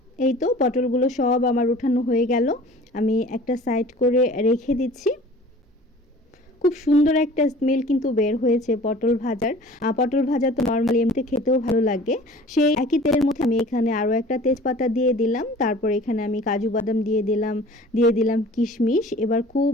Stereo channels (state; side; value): normal; both; correlation 0.46